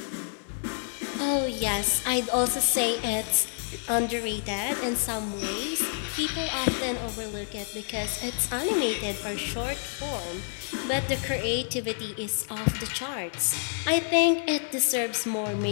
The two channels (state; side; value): silent; right; 59 dB below the other